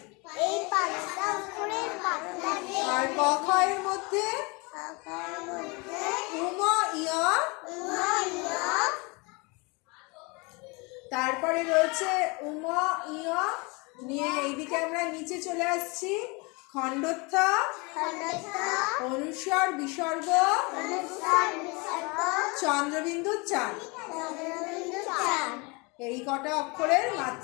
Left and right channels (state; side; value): quieter; right; 28.5 dB